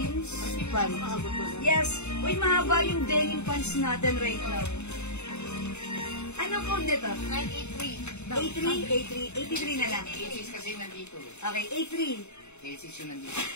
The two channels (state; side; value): late; right; 0.82 ms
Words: pants? Yes, uy, mahaba yung denim pants natin right now. Ano code nito? 83. 83 na lang. cases kasi nandito. Okay, 83. Cases yung nandito.